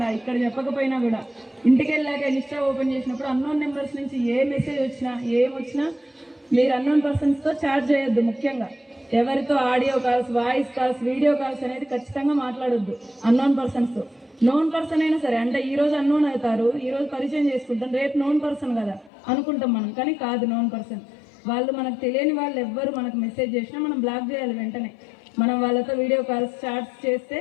ఇక్కడ చెప్పకపోయినా కూడా ఇంటికి వెళ్ళాక ఇన్స్టా ఓపెన్ చేసినప్పుడు అన్నోన్ నెంబర్స్ నుంచి ఏ మెసేజ్ వచ్చినా ఏమొచ్చినా మీరు అన్నోన్ పర్సన్స్తో చాట్ చేయొద్దు. ముఖ్యంగా ఎవరితో audio calls, voice calls, video calls అనేది ఖచ్చితంగా మాట్లాడొద్దు అన్నోన్ పర్సన్స్తో. నోన్ పర్సన్ అయినా సరే, అంటే ఈ రోజు అన్నోన్ అవుతారు, ఈ రోజు పరిచయం చేసుకుంటాం, రేపు నోన్ పర్సన్ కదా అనుకుంటాం మనం, కానీ కాదు నోన్ పర్సన్. వాళ్ళు మనకు తెలియని వాళ్ళు ఎవ్వరు మనకు మెసేజ్ చేసినా మనం బ్లాక్ చేయాలి వెంటనే. మనం వాళ్ళతో వీడియో కాల్స్, చాట్స్ చేస్తే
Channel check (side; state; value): right; drops out; at 19.1 s